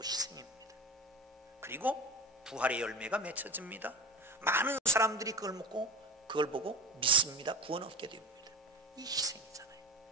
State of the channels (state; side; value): normal; both; correlation 0.31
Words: 희생입니다. 그리고 부활의 열매가 맺혀집니다. 많은 사람들이 그걸 보고 믿습니다. 구원 얻게 됩니다. 이 희생이잖아요.